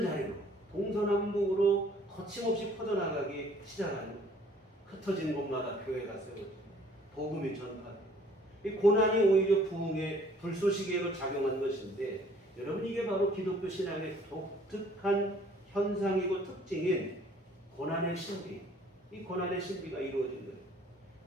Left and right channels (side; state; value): both; normal; correlation 0.57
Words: 자리로 동서남북으로 거침없이 퍼져나가기 시작하는, 흩어진 곳마다 교회가 세워지고 복음이 전파되고, 이 고난이 오히려 부흥의 불쏘시개로 작용한 것인데, 여러분, 이게 바로 기독교 신앙의 독특한 현상이고 특징인 고난의 신비, 이 고난의 신비가 이루어진 거예요.